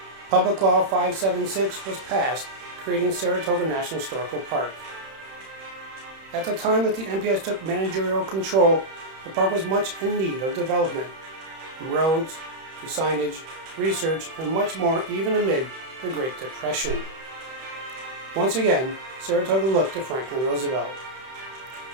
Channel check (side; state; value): left; late; 31 ms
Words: Public Law 576 was passed, creating Saratoga National Historical Park. At the time that the NPS took managerial control, the park was much in need of development, from roads to signage, research, and much more, even amid the Great Depression. Once again, Saratoga looked to Franklin Roosevelt.